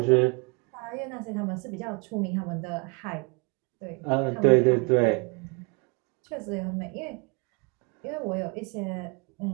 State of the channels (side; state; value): left; quieter; 31.8 dB